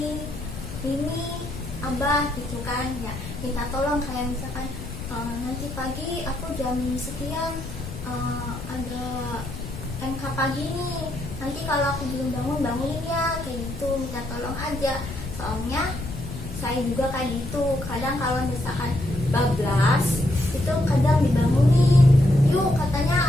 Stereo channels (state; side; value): noise; left; rumble, 9 dB below the sound